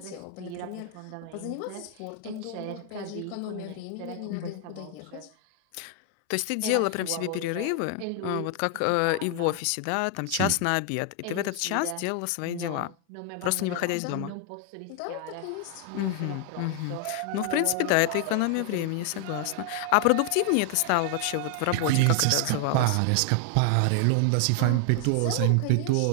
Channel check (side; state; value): both; different; correlation 0.00